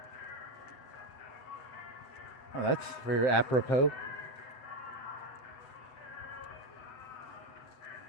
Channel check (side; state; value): right; late; 7.5 ms